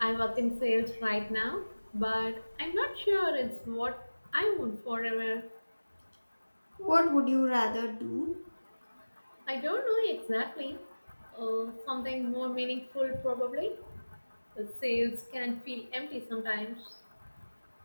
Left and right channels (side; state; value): both; inverted; correlation -1.00